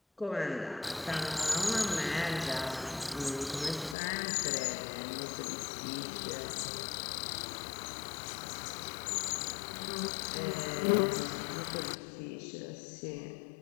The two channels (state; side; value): drops out; right; at 4.0 s